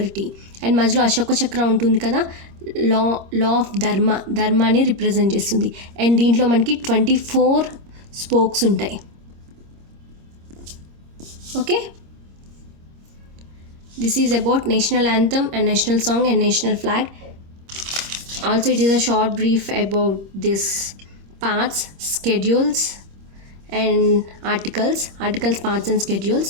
And మధ్యలో అశోక చక్ర ఉంటుంది కదా, లా ఆఫ్ ధర్మాని రిప్రజెంట్ చేస్తుంది. And దీంట్లో మనకి 24 స్పోక్స్ ఉంటాయి. Okay, this is about national anthem and national song and national flag. Also, it is a short brief about this parts, schedules and articles, parts and schedules.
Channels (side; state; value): left; late; 26 ms